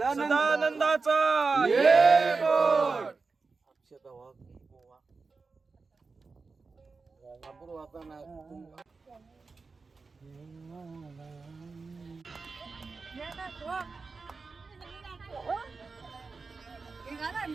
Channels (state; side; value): quieter; left; 4.3 dB